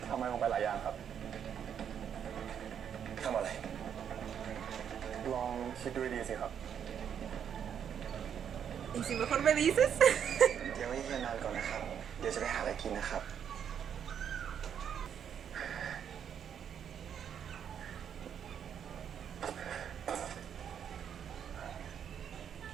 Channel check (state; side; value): quieter; left; 8.4 dB